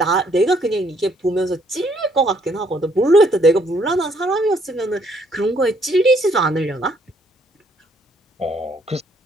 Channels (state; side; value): normal; both; correlation 0.67